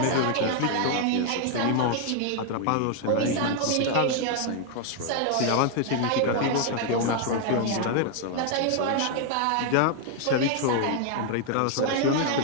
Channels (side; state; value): both; different; correlation 0.00